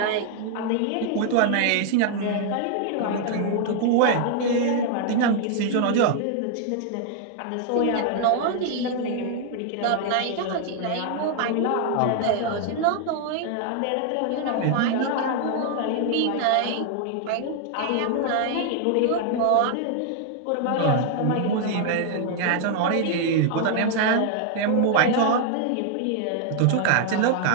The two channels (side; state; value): both; different; correlation 0.00